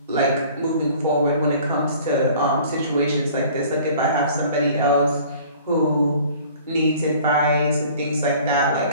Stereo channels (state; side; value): inverted; both; correlation -0.50